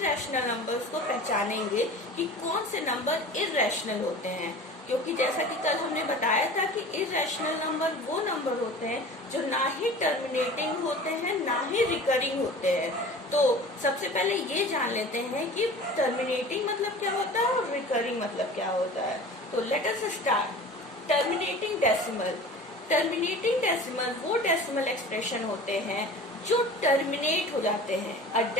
नंबर्स को पहचानेंगे कि कौन से नंबर इर्रेशनल होते हैं। क्योंकि जैसा कि कल हमने बताया था कि इर्रेशनल नंबर वो नंबर होते हैं जो ना ही टर्मिनेटिंग होते हैं ना ही रिकरिंग होते हैं। तो सबसे पहले ये जान लेते हैं कि टर्मिनेटिंग मतलब क्या होता है और रिकरिंग मतलब क्या होता है। तो late us start. Terminating decimal. Terminating decimal वो डेसिमल एक्सप्रेशन होते हैं जो टर्मिनेट हो जाते हैं। A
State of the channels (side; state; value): both; normal; correlation 0.39